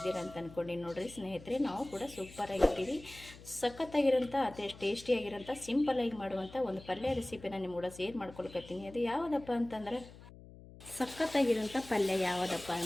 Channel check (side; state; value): left; noise; hum, 18 dB below the sound